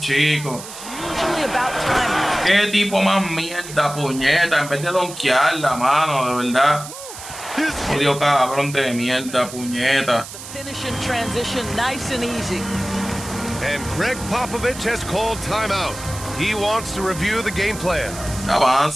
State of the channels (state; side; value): noise; right; hiss, 12 dB below the sound